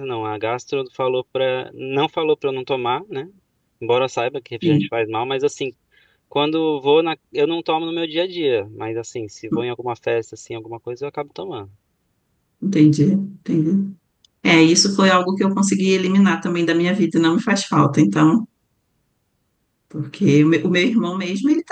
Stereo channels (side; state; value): both; identical; correlation 1.00